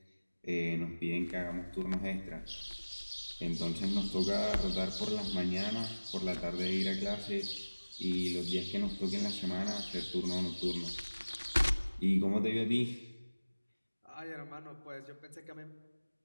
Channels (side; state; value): both; inverted; correlation -1.00